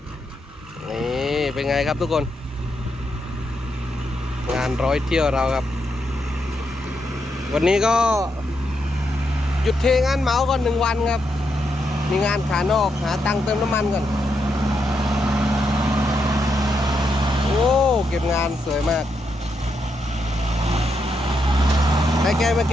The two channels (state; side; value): normal; both; correlation 0.81